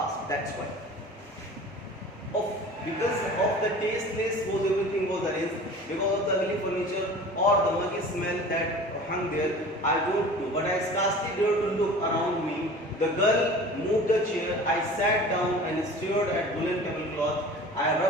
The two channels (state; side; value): normal; both; correlation 0.41